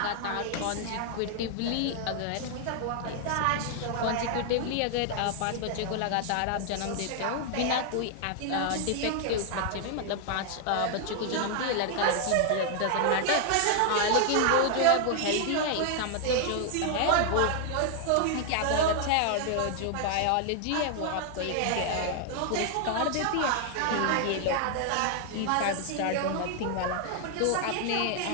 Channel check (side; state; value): both; different; correlation 0.00